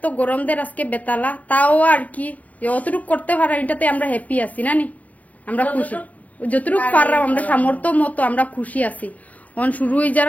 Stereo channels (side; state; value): right; late; 0.072 ms